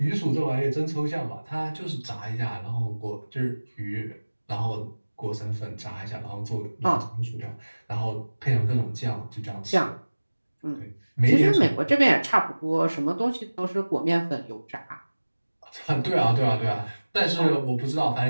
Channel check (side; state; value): both; inverted; correlation -1.00